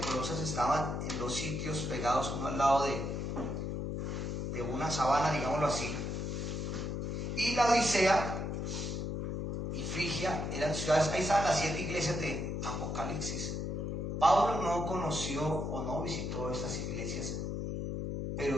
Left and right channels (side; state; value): left; noise; hum, 2 dB below the sound